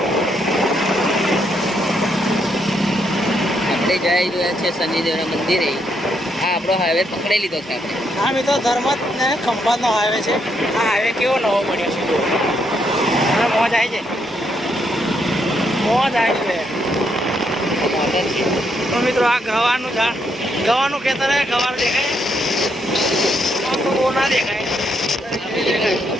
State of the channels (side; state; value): both; normal; correlation 0.76